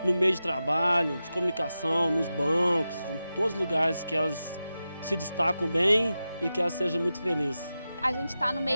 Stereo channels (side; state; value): both; inverted; correlation -0.92